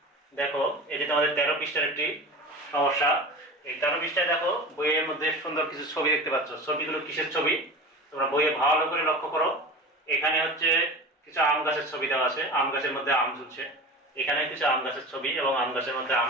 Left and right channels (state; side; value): normal; both; correlation 0.33